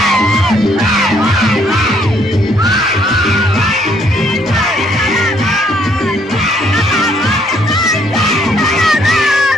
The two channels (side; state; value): both; normal; correlation 0.67